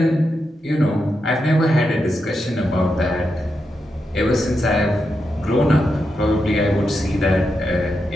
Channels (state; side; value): normal; both; correlation 0.86